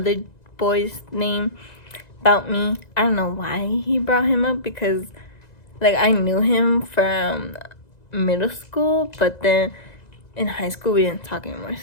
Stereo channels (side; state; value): right; late; 1.9 ms